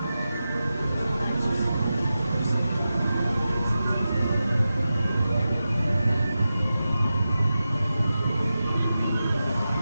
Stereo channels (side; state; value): both; inverted; correlation -0.93